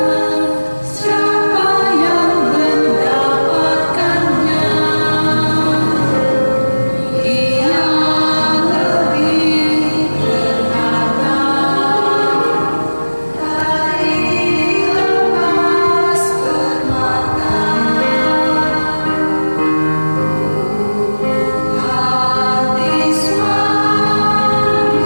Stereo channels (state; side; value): inverted; both; correlation -1.00